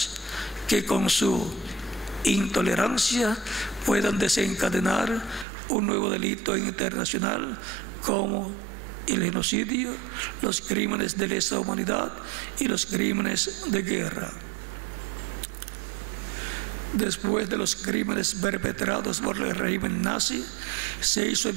que con su intolerancia puedan desencadenar un nuevo delito internacional como el genocidio, los crímenes de lesa humanidad y los crímenes de guerra. Después de los crímenes perpetrados por el régimen nazi, se hizo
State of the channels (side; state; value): left; drops out; at 5.5 s